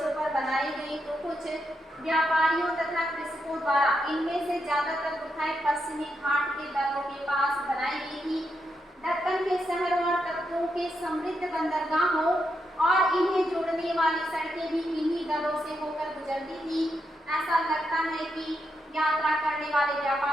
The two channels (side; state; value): both; normal; correlation 0.82